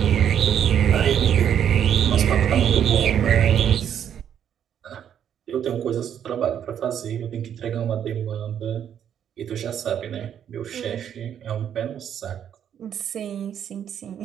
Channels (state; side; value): quieter; left; 9.2 dB